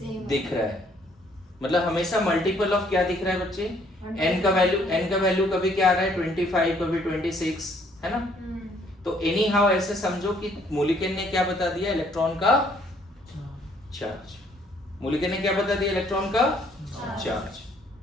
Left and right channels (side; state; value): both; normal; correlation 0.64